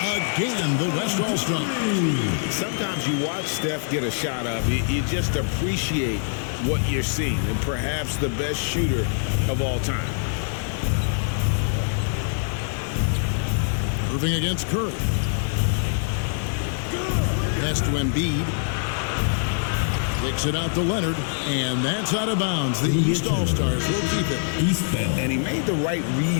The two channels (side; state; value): right; silent; digital silence